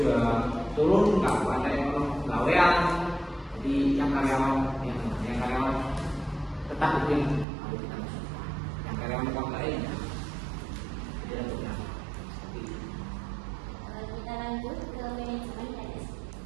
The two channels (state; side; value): drops out; left; at 7.5 s